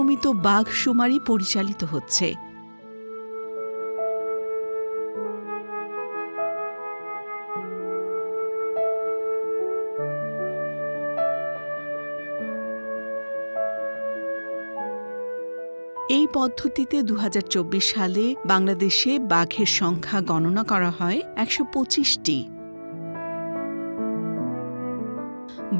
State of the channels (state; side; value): inverted; both; correlation -1.00